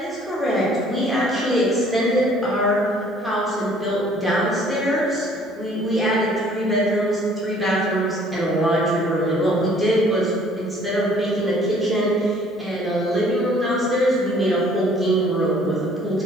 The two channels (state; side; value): normal; both; correlation 0.57